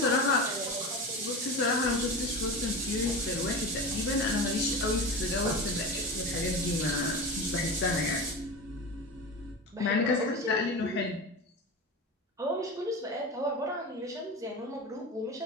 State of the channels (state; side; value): normal; both; correlation 0.27